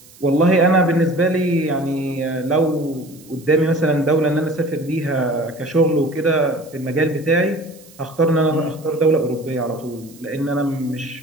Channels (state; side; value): noise; right; hiss, 24 dB below the sound